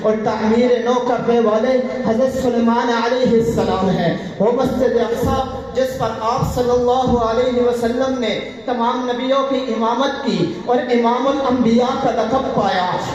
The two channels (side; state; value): both; identical; correlation 1.00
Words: اور تعمیر نو کرنے والے حضرت سلیمان علیہ السلام ہے۔ وہ مسجد اقصی جس پر آپ صلی اللہ علیہ وسلم نے تمام نبیوں کی امامت کی اور امام الانبیاء کا لقب پایا،